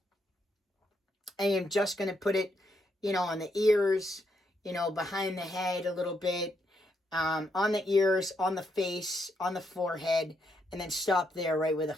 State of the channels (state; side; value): normal; both; correlation 0.78